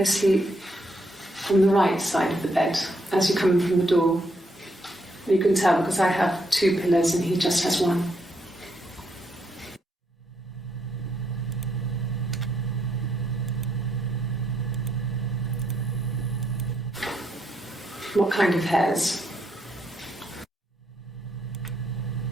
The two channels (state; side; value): normal; both; correlation 0.76